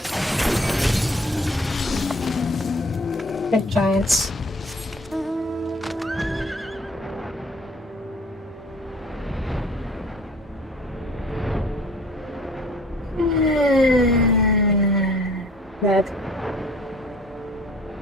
Big giants. Bad.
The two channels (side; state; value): both; normal; correlation 0.52